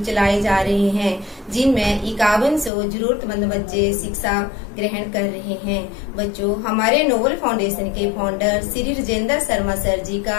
चलाए जा रहे हैं, जिनमें 5100 जरूरतमंद बच्चे शिक्षा ग्रहण कर रहे हैं। बच्चों हमारे नोबल फाउंडेशन के फाउंडर श्री राजेंद्र शर्मा सर जी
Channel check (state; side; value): drops out; right; at 2.7 s